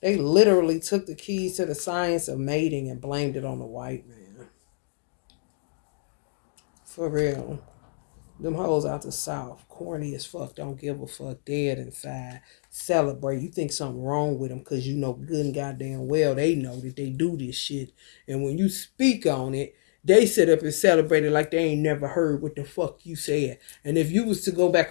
They literally took the keys to the science of mating and blamed it on the white man. For real. Them hoes out the South. Corny as fuck. Don't give a fuck. Dead inside. Celebrate. You think something wrong with them because you know good and goddamn well they know that they do this shit. And when you speak on it, they sit up and celebrate it like they ain't never heard what the fuck you said. And if you was to go back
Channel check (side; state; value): right; silent; digital silence